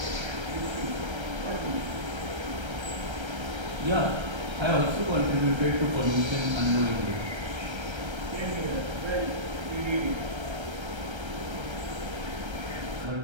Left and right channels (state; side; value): late; left; 1.3 ms